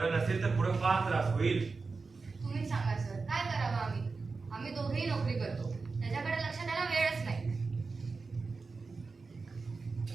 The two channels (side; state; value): left; quieter; 4.3 dB